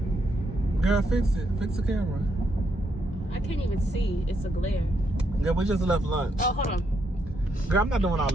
Girl, fix it. Fix the camera. I can't even see. It's a glare. Girl, we just left lunch. Oh, hold on. Girl, I'm not doing all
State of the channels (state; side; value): normal; both; correlation 0.78